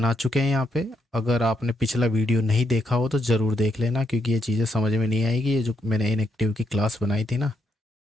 चुके हैं यहाँ पे। अगर आपने पिछला वीडियो नहीं देखा हो तो ज़रूर देख लेना, क्योंकि ये चीज़ें समझ में नहीं आएगी। ये जो मैंने इनएक्टिव की क्लास बनाई थी ना,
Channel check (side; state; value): both; normal; correlation 0.79